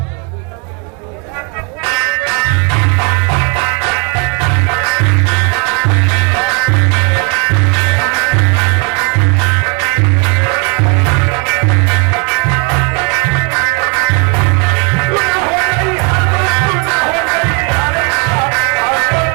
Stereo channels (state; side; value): quieter; left; 33.9 dB